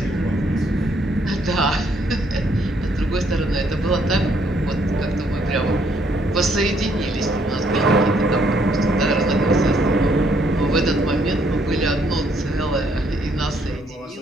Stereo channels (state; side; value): normal; both; correlation 0.69